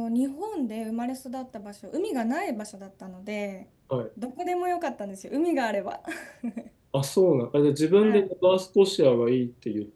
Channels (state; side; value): identical; both; correlation 1.00